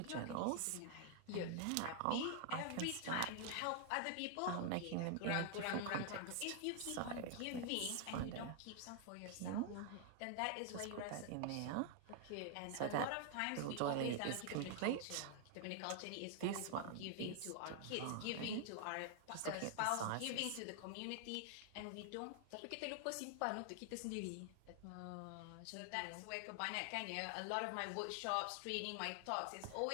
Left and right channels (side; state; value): both; different; correlation 0.00